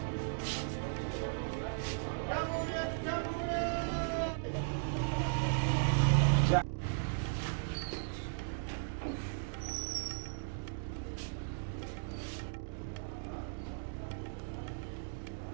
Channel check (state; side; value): silent; left; digital silence